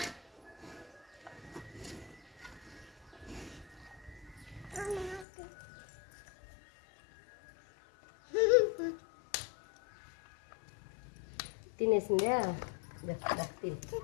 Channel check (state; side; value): drops out; right; at 5.2 s